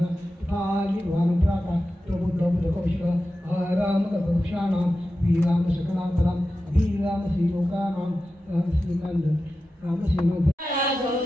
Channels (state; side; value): normal; both; correlation 0.93